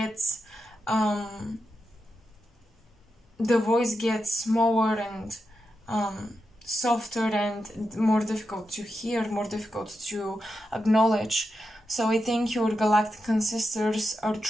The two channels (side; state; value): both; normal; correlation 0.88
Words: the voice gets smaller and softer and more difficult to hear, more difficult to acknowledge. So I think your galactic ancestors are